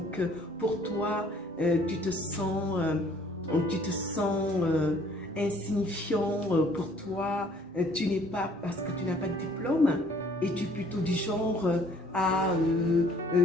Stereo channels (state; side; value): normal; both; correlation 0.58